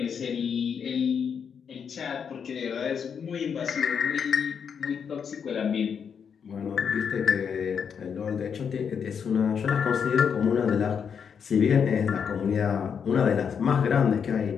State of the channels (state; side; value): quieter; right; 7.0 dB